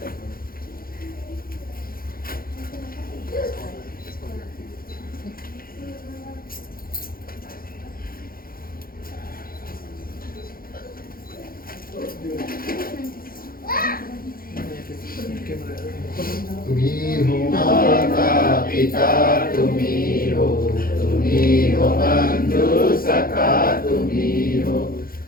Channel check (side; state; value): right; late; 0.42 ms